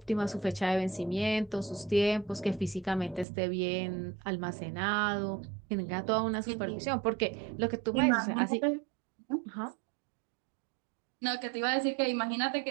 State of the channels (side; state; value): left; drops out; at 3.2 s